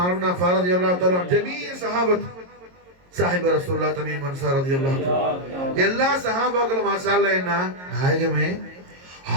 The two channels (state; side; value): late; left; 22 ms